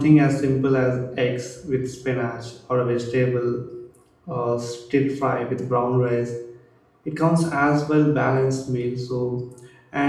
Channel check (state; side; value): identical; both; correlation 1.00